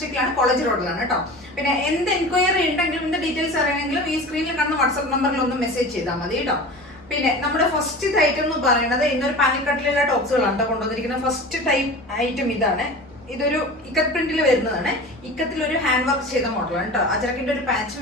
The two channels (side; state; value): both; normal; correlation 0.35